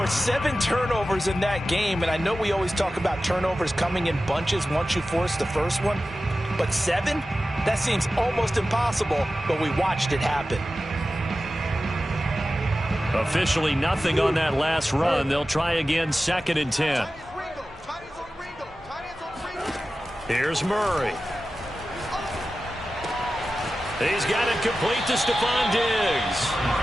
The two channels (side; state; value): both; normal; correlation 0.94